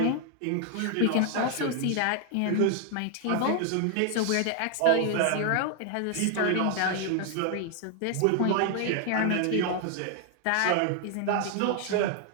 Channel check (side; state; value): both; different; correlation 0.00